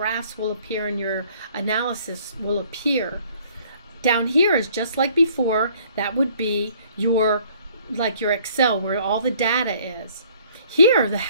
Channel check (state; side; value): inverted; both; correlation -0.59